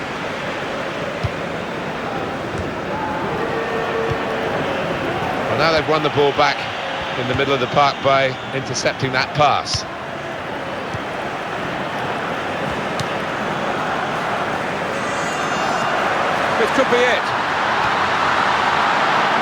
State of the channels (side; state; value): both; identical; correlation 1.00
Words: Well, now they've won the ball back in the middle of the park by intercepting that pass. This could be it.